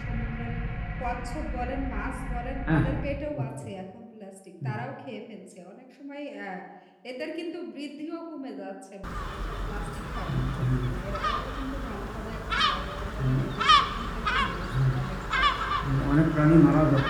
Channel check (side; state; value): both; identical; correlation 1.00